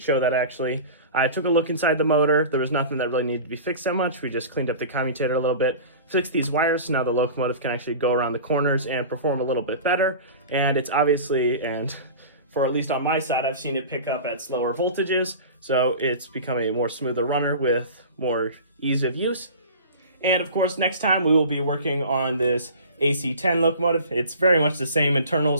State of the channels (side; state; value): both; inverted; correlation -0.37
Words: show that actually. I took a look inside the motor. There was nothing that really needed to be fixed that much. We just cleaned up the commutator a little bit, fixed these wires, so now the locomotive can actually go around the corners and perform a little bit better. And it's obviously, and for at least on my side, I've seen it pick up at slower voltages, so it's becoming a more smoother runner with more ease of use. And of course, next time we will be working on this AC-10 locomotive. It's very much the same